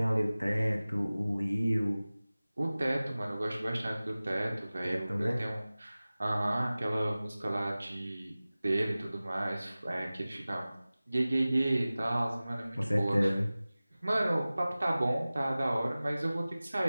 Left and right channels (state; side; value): inverted; both; correlation -0.98